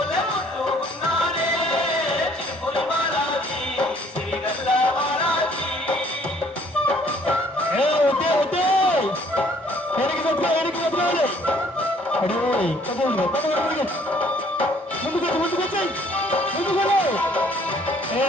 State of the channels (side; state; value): both; normal; correlation 0.61